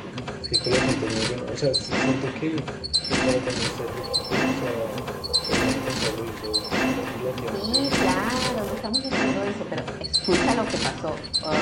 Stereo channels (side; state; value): both; identical; correlation 1.00